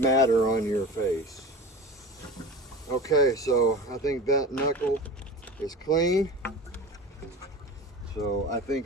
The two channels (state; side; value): normal; both; correlation 0.33